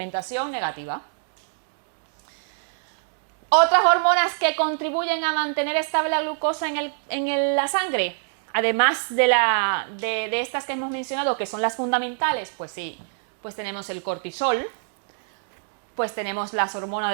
negativa. Otras hormonas que contribuyen a mantener estable la glucosa en la sangre, además de estas que hemos mencionado, que son las fundamentales, pues sí, pues tenemos el cortisol, pues tenemos las hormonas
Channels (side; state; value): left; silent; digital silence